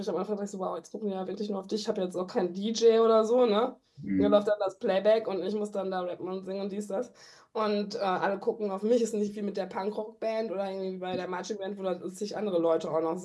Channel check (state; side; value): identical; both; correlation 1.00